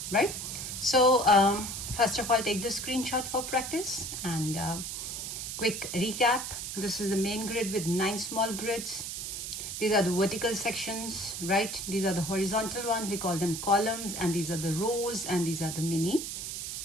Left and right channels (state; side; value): noise; right; hiss, 5 dB below the sound